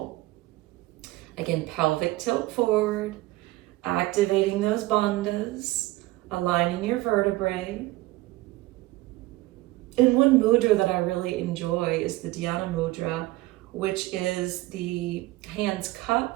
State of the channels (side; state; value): left; quieter; 18.5 dB